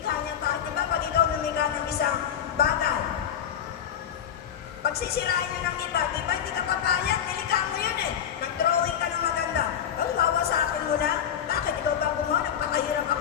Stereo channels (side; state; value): right; quieter; 9.1 dB